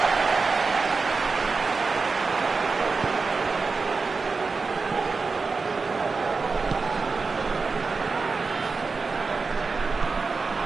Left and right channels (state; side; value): quieter; left; 4.4 dB